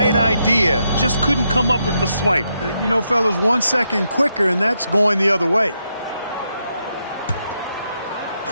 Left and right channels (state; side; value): inverted; both; correlation -0.81